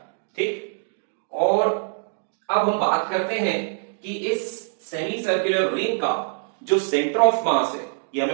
ठीक, और अब हम बात करते हैं कि इस सेमी सर्कुलर रिंग का जो सेंटर ऑफ मास है, ये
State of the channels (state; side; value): silent; left; digital silence